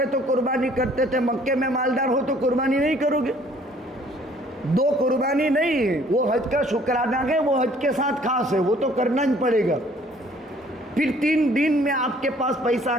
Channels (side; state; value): both; normal; correlation 0.58